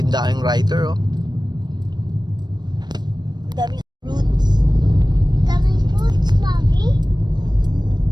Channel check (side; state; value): left; late; 0.21 ms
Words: daming rider oh. Daming fruits. Daming fruits, Mommy.